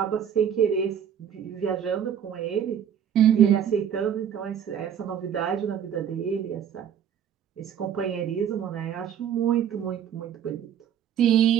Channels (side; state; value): left; quieter; 8.9 dB